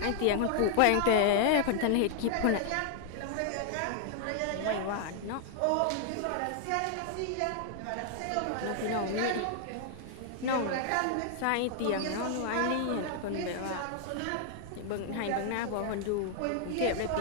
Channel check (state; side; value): different; both; correlation 0.00